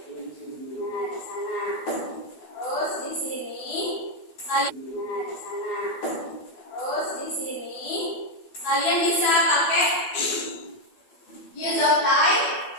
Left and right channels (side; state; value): right; late; 12 ms